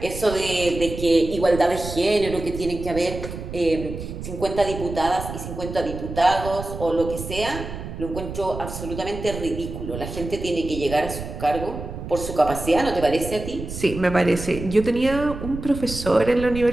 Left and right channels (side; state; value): right; noise; rumble, 9 dB below the sound